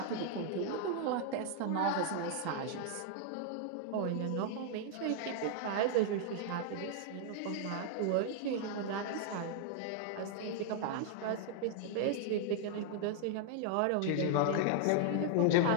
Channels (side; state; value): both; different; correlation 0.00